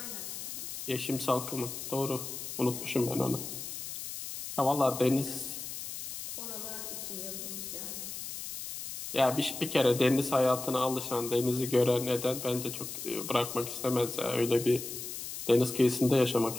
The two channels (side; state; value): left; noise; hiss, 8 dB below the sound